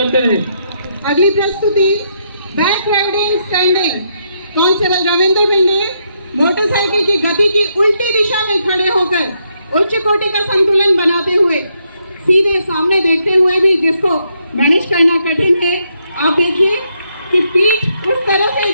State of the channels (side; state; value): both; inverted; correlation -0.77